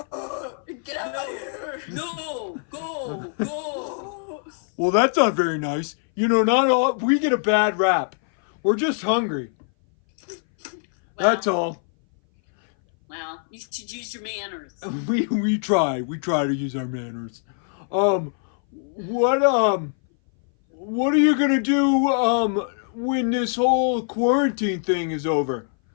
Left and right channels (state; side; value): silent; right; 60 dB below the other